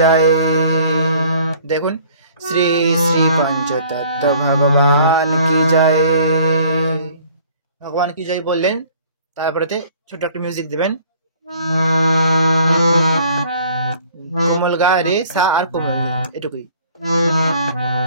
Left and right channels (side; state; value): both; inverted; correlation -0.54